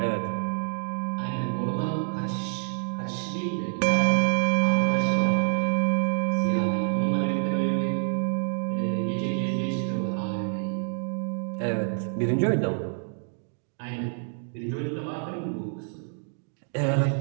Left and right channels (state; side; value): silent; left; 60 dB below the other